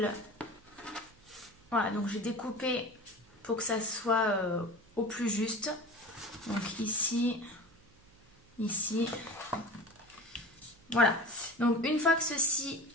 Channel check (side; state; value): right; noise; hum, 28 dB below the sound